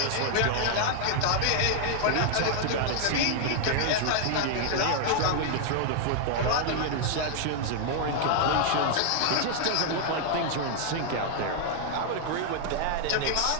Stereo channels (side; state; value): both; different; correlation 0.00